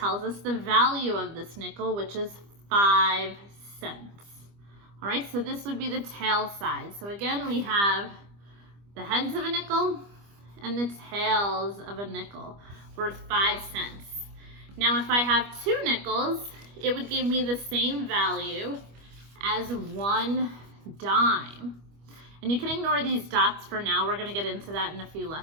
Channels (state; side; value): late; left; 25 ms